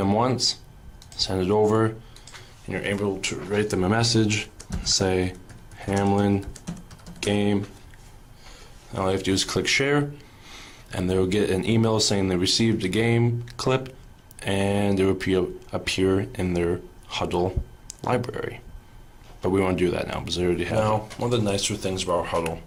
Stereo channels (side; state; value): both; identical; correlation 1.00